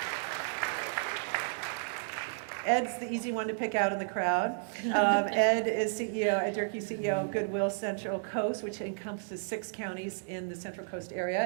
Ed's the easy one to pick out in the crowd. Ed is CEO, Ed Durkee, CEO of Goodwill Central Coast, which encompasses 6 counties in the Central Coast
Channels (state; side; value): silent; left; digital silence